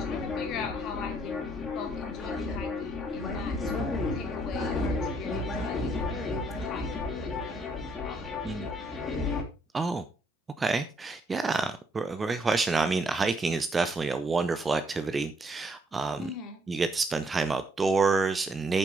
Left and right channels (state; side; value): normal; both; correlation 0.70